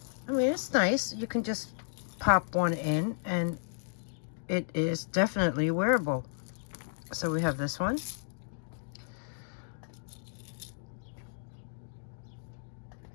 I mean, it's nice. You can just pop one in, and it is definitely wearable. So we have this one.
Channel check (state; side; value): silent; right; digital silence